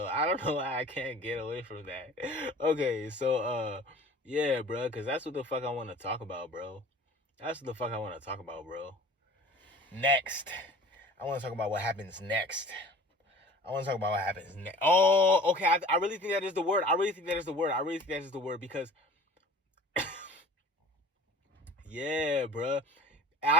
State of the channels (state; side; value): normal; both; correlation 0.44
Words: I don't know why I can't get away from that. Okay, so yeah, bro, because that's what the fuck I want to talk about, bro. That's what the fuck I want to talk about, bro. Next, I want to talk about what happens next. Oh, okay. I really think that is the word. Because, yeah, bro.